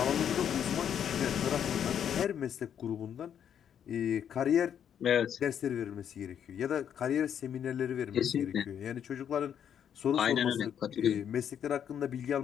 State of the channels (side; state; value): right; quieter; 8.9 dB